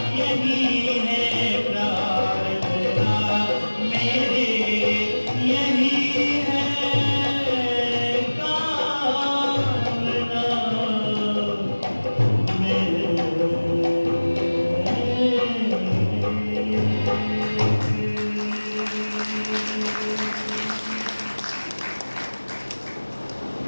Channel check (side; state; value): both; inverted; correlation -1.00